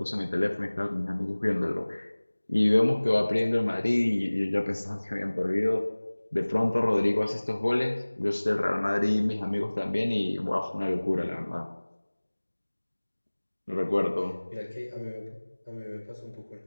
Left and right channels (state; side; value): inverted; both; correlation -1.00